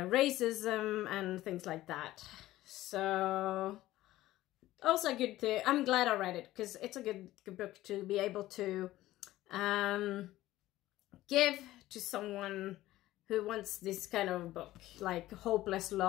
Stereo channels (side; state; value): right; quieter; 15.8 dB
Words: and things like that. So also good to, I'm glad I read it, because it's a good book to be able to give to someone who wants this kind of book, like Hopeless